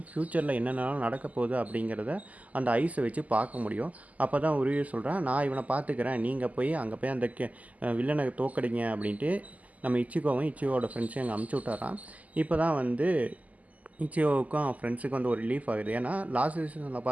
ஃப்யூச்சரில் என்னென்னலாம் நடக்க போகுது அப்படிங்கிறத அந்த ஐஸை வச்சு பார்க்க முடியும். அப்போ தான் உருவி சொல்கிறான், நான் இவனை பார்த்துக்கிறேன், நீங்கள் போய் அங்கே போய் அந்த வில்லனை தோக்கடிங்க அப்படின்ட்டு நம்ம இச்சிகோவோட ஃப்ரெண்ட்ஸையும் அங்கே அமுச்சு விட்டாரான். இப்போ தான் வந்து இச்சியோவுக்கும் அவன் ஃப்ரெண்ட்ஸுக்கு வந்து ஒரு ரிலீஃப் ஆகுது. ஏன்னா லாஸ்ட் சீசனில்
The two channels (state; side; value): late; left; 0.075 ms